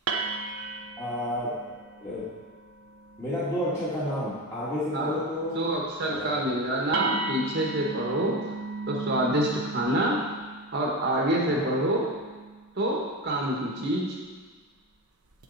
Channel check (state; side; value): normal; both; correlation 0.21